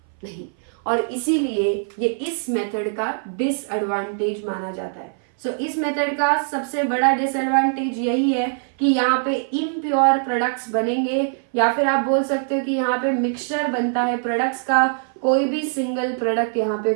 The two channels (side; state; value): left; silent; 58 dB below the other